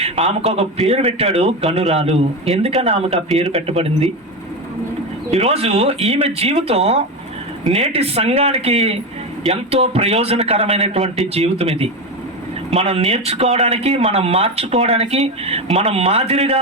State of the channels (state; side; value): normal; both; correlation 0.17